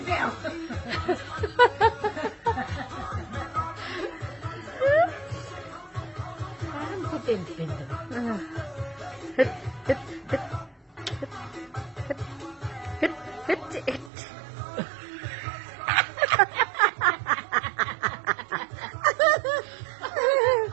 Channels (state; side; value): drops out; left; at 14.1 s